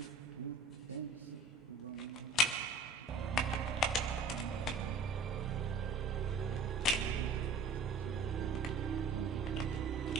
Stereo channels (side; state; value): left; quieter; 3.5 dB